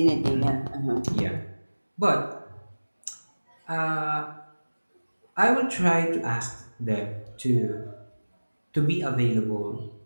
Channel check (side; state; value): both; inverted; correlation -1.00